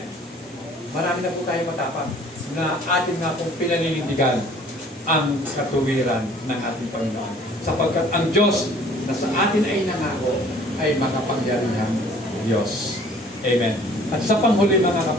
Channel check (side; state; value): both; normal; correlation 0.53